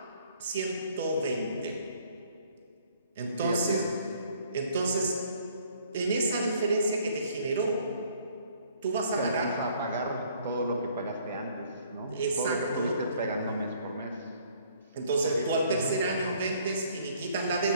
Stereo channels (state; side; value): inverted; both; correlation -0.60